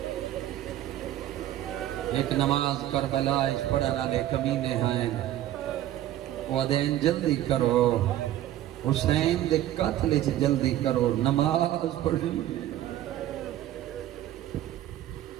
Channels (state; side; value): quieter; left; 13.1 dB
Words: ایک نماز کربلا پڑھن والے کمینے ہیں، وہ دین جلدی کرو، حسین دے قتل چ جلدی کرو، نماز پڑھنی ہے.